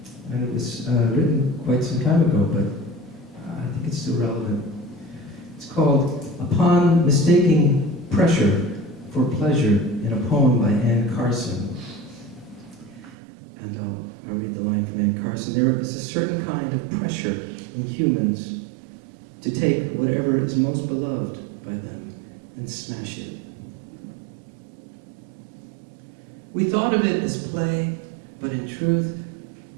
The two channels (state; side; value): drops out; left; at 13.2 s